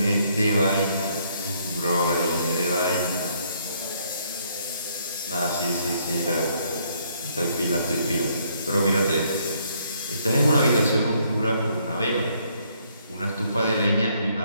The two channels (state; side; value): inverted; both; correlation -0.69